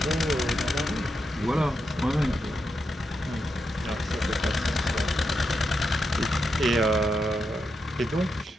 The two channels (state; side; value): normal; both; correlation 0.85